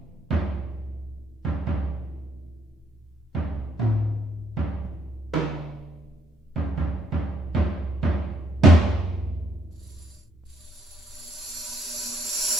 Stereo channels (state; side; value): normal; both; correlation 0.71